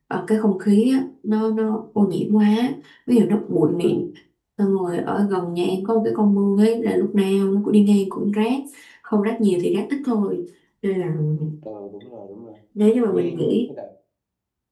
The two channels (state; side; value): identical; both; correlation 1.00